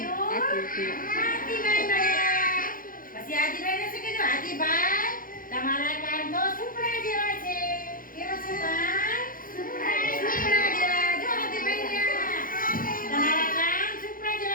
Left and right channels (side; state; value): right; late; 0.40 ms